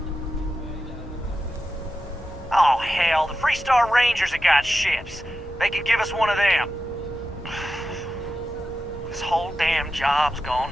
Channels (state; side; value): normal; both; correlation 0.91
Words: Oh, hell, the Freestar Rangers have got ships. They could give us one of them. This whole damn job's